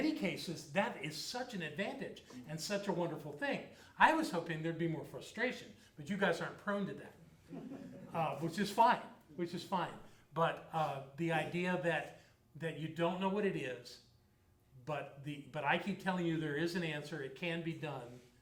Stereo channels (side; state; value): both; identical; correlation 1.00